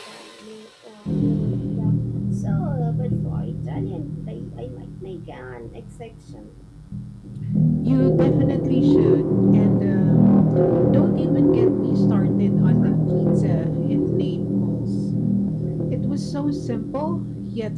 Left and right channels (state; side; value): identical; both; correlation 1.00